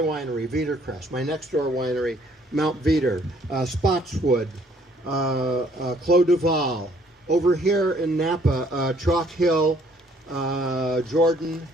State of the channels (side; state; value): both; normal; correlation 0.62